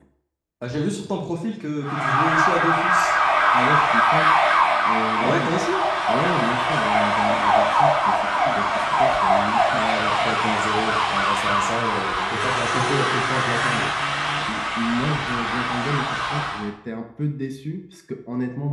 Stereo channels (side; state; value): both; identical; correlation 1.00